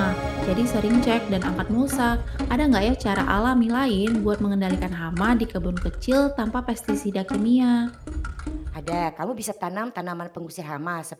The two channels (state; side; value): identical; both; correlation 1.00